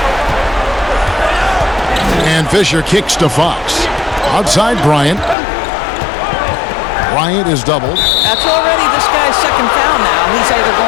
And Fisher kicks to Fox. Outside Bryant. Bryant is doubled. That's already this guy's second foul now. He's either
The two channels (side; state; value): right; drops out; at 5.4 s